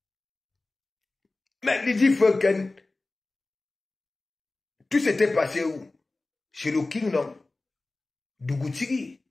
Mais Lydie Foken, tout s'était passé où? Chez le King, non? Dougoutigui.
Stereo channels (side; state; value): right; quieter; 3.2 dB